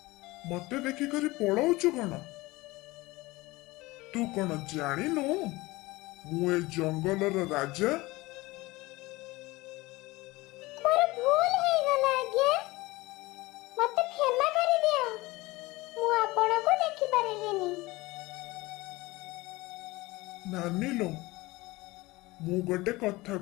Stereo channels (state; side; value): quieter; right; 21.1 dB